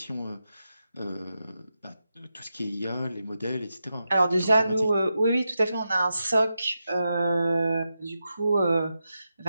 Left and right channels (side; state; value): both; inverted; correlation -0.89